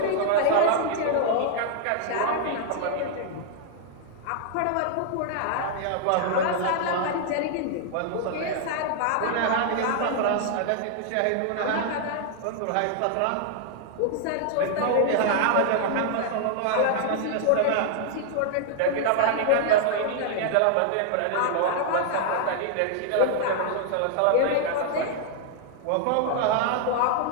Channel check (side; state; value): both; different; correlation -0.01